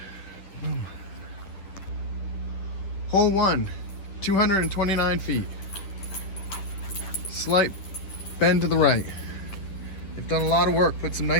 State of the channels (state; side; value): late; right; 10 ms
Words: Hole 1, 229 feet. Slight bend to the right. They've done a lot of work, put some